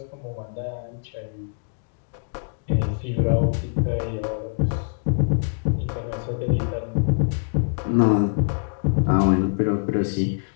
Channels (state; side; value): silent; right; digital silence